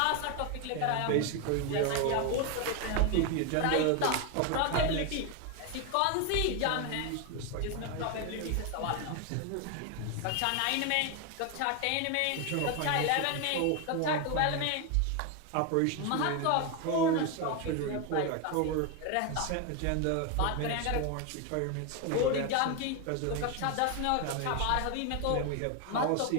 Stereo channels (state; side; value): different; both; correlation 0.01